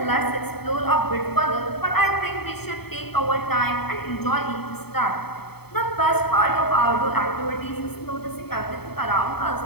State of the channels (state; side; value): late; right; 0.96 ms